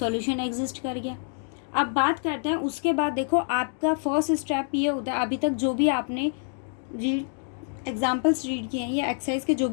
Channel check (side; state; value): right; silent; 60 dB below the other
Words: एग्जिस्ट कर गया। अब बात करते हैं उसके बाद। देखो, आपका फर्स्ट स्टेप ये होता है, अभी तक जो भी आपने रीड एग्जाम्पल्स रीड किए हैं या एक्सरसाइज के जो